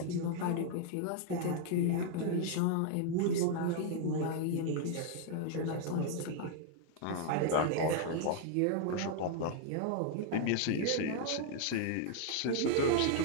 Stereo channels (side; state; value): both; different; correlation -0.01